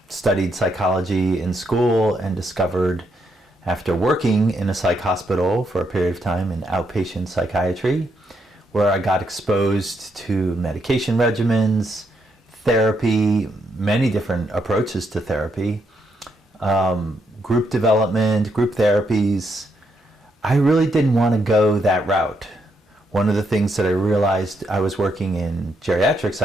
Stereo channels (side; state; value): both; normal; correlation 0.77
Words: studied psychology in school and discovered after working in a psych hospital for a period of time in outpatient psychiatry, where I got exposed to medication regimens, therapy, many different approaches to therapy, group development, group therapies. I really didn't want to go that route. One of the things that I realized, I was working in geriatric